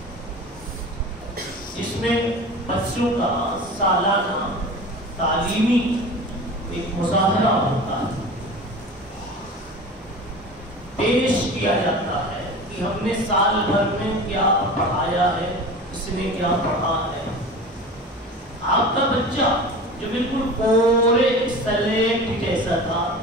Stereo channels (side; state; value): both; normal; correlation 0.35